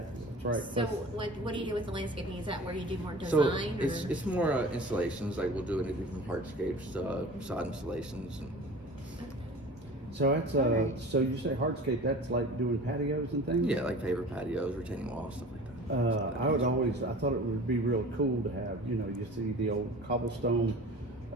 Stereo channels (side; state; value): both; normal; correlation 0.40